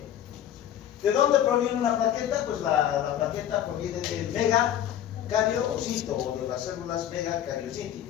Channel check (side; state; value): right; quieter; 10.8 dB